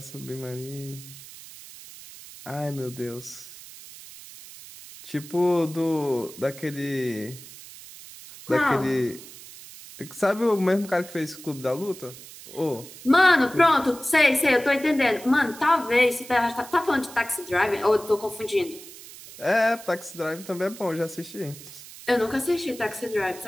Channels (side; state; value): right; noise; hiss, 16 dB below the sound